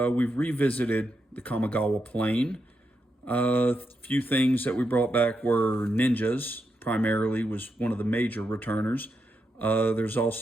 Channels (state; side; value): normal; both; correlation 0.84